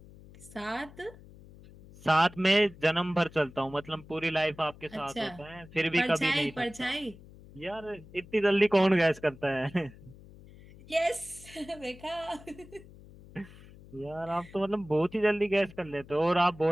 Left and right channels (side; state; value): left; noise; hum, 20 dB below the sound